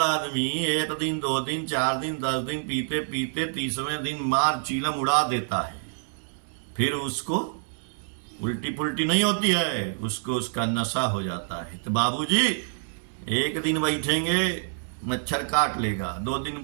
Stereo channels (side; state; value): left; silent; digital silence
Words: आदमी 1 दिन 2 दिन 4 दिन 10 दिन पीते पीते 30वें दिन मार चीलम उड़ा देता है। फिर उसको उल्टी पुल्टी नहीं होती है, उसको उसका नशा हो जाता है। तो बाबूजी 1 दिन बैठेंगे मच्छर काट लेगा, 2 दिन